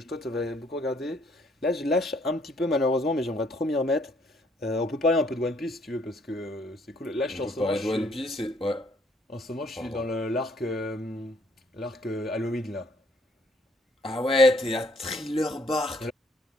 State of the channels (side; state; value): both; normal; correlation 0.65